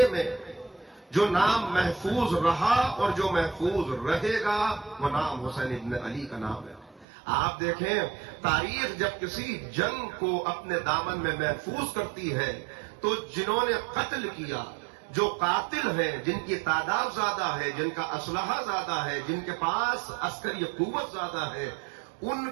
میں جو نام محفوظ رہا اور جو محفوظ رہے گا وہ نام حسین ابن علی کا نام ہے. آپ دیکھیں، تاریخ جب کسی جنگ کو اپنے دامن میں محفوظ کرتی ہے تو جنہوں نے قتل کیا، جو قاتل ہیں، جن کی تعداد زیادہ ہے، جن کا اسلحہ زیادہ ہے، جن کے پاس عسکری قوت زیادہ ہے، ان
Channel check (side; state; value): left; drops out; at 7.1 s